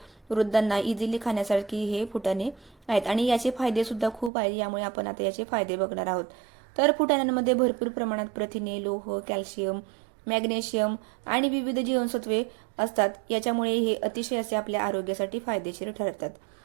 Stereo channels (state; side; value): drops out; left; at 4.3 s